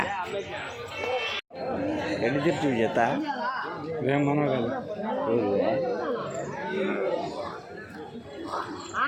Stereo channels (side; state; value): both; identical; correlation 1.00